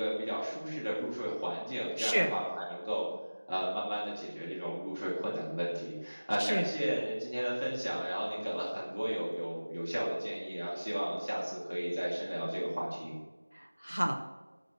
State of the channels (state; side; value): inverted; both; correlation -1.00